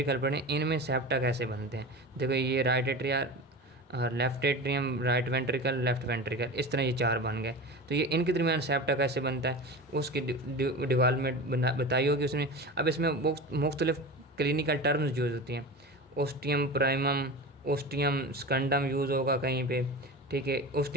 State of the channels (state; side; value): normal; both; correlation 0.30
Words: पढ़े, इनमें सेप्टा कैसे बनते हैं। देखो ये right atria, left atrium, right ventricle, left ventricle, इस तरह ये 4 बन गए। तो ये इनके दरमियान सेप्टा कैसे बनता है, उसकी डेवलपमेंट बताई होगी उसने। अब इसमें मुख्तलिफ क्लिनिकल टर्म्स यूज़ होती हैं। ओस्टियम प्राइमम, ओस्टियम स्कंडम यूज़ होगा कहीं पे, ठीक है।